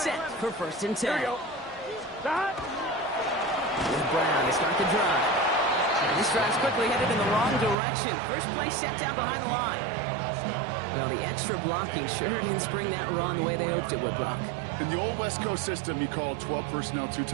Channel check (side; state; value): left; drops out; at 7.8 s